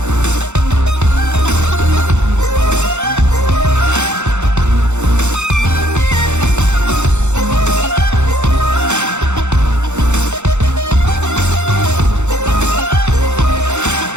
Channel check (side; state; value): left; late; 0.83 ms